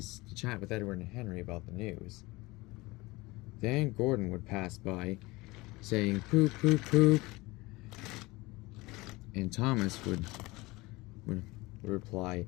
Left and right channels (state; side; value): quieter; right; 21.9 dB